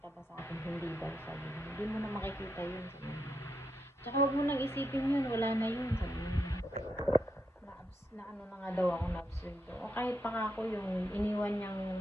ba sa akin, hindi daw, sabi niya. Hindi mo na makikita yun, sabi niya. Tsaka huwag mo nang isipin yun, wala na yun, sabi niya. Na ano na nga daw ako na-absurd. O kahit pa ako yung iniwan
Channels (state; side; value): normal; both; correlation 0.82